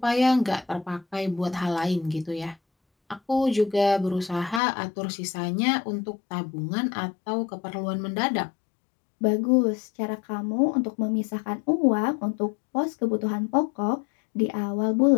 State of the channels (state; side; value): drops out; right; at 4.6 s